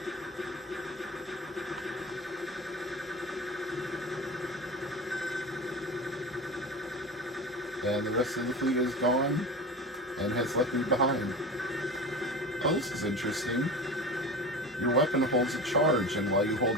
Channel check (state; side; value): normal; both; correlation 0.30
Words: And the rest of the fleet is gone and has left me behind. Oh, this is interesting. Your weapon holds a charge, and while you